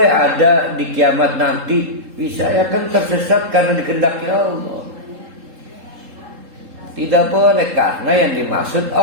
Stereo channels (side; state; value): left; late; 3.7 ms